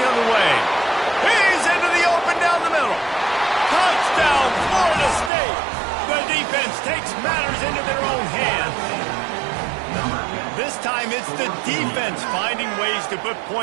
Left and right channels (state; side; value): drops out; left; at 5.3 s